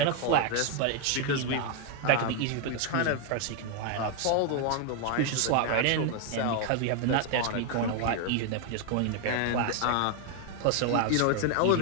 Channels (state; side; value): different; both; correlation 0.01